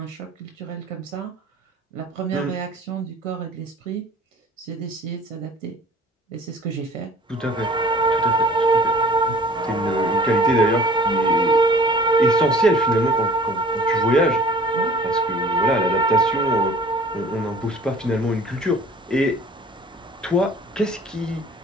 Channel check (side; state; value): both; normal; correlation 0.48